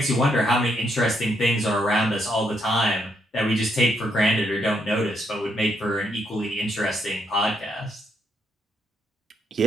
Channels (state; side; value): normal; both; correlation 0.76